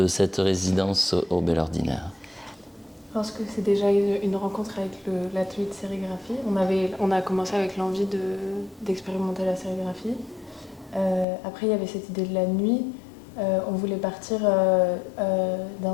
cette résidence au Bel Ordinaire? Je pense que c'est déjà une rencontre avec l'atelier de sérigraphie. On a commencé avec l'envie d'expérimenter la sérigraphie. Après, il y avait cette idée de la nuit. On voulait partir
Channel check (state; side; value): drops out; right; at 11.2 s